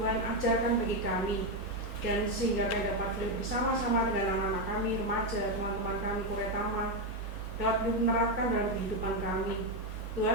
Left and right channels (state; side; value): normal; both; correlation 0.06